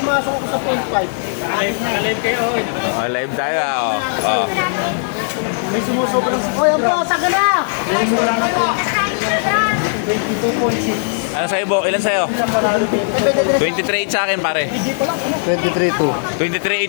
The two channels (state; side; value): silent; right; 68 dB below the other